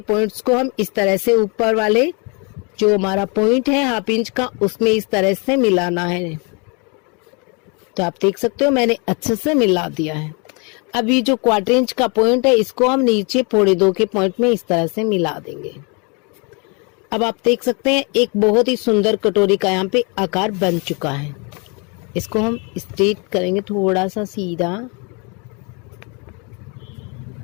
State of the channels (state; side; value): quieter; right; 32.4 dB